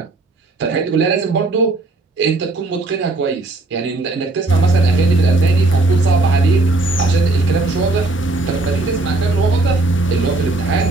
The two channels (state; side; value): quieter; left; 3.0 dB